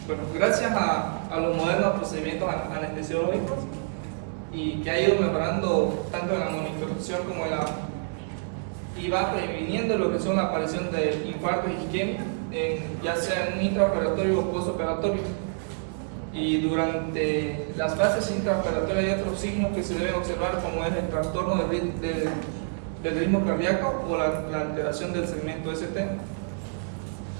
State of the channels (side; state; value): left; silent; 60 dB below the other